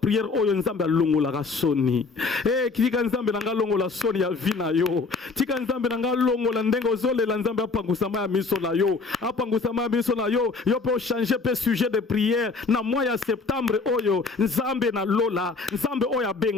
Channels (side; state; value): right; quieter; 4.1 dB